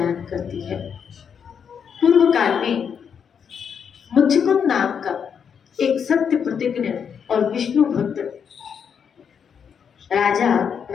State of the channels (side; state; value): right; quieter; 7.2 dB